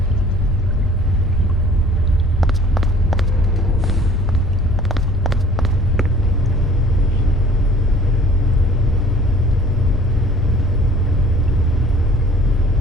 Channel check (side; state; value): both; normal; correlation 0.50